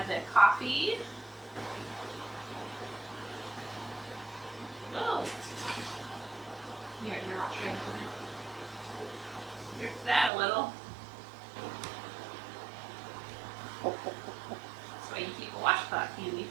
the coffee. Oh, You're not sure. here's that a little. That's why you keep a washcloth handy.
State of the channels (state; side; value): drops out; left; at 10.3 s